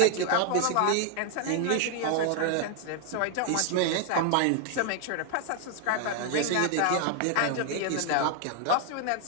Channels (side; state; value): both; different; correlation 0.00